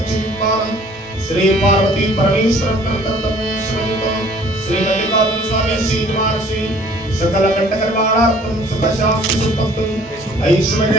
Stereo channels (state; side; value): normal; both; correlation 0.54